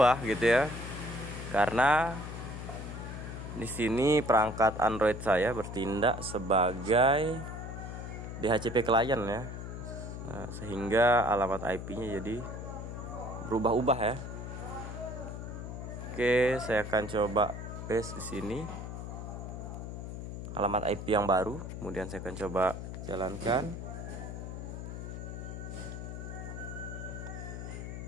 gitu ya? Karena di sini perangkat Android saya bertindak sebagai DHCP client ya. Nah, sehingga alamat IP-nya jadi berubah-ubah ya. Oke, saya akan coba paste di sini alamat IP yang baru, kemudian saya akan coba jalankan.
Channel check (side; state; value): left; noise; hum, 7 dB below the sound